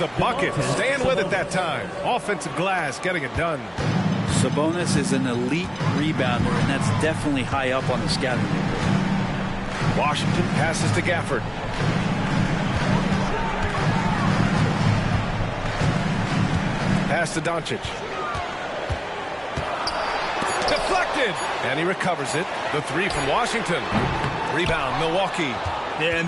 bucket. Staying with it that time. Offensive glass getting it done. Sabonis is an elite rebounder, and that's definitely high up on the scouting report. Washington passes to Gafford. Pass to Doncic. Deflected! And he recovers it. The 3 from Washington. Rebound, Milwaukee. Yeah, and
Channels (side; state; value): both; identical; correlation 1.00